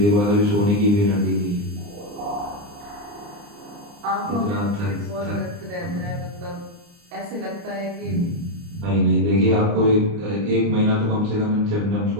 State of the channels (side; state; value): left; late; 29 ms